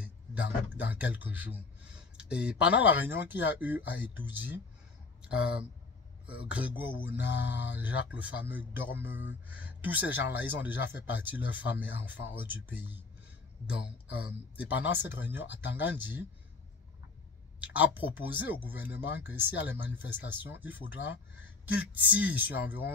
dans quelques jours. Et pendant la réunion qu'il y a eu à Itoudi, Grégoire Ouna, Jacques le fameux Dormeux, tous ces gens-là, ils ont déjà fait partie de leurs femmes et enfants hors du pays. Donc, et pendant cette réunion, Tangandi a proposé au gouvernement que s'il y a les manifestations, il faudra qu'il tire sur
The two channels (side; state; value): right; quieter; 4.3 dB